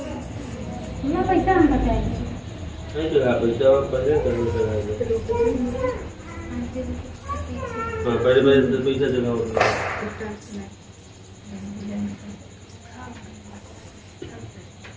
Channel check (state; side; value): identical; both; correlation 1.00